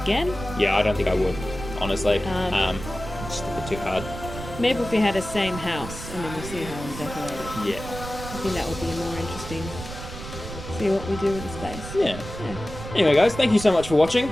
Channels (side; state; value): right; noise; rumble, 10 dB below the sound